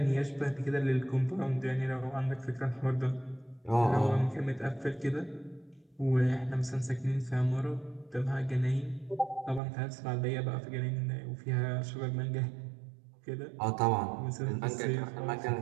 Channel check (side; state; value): left; drops out; at 9.6 s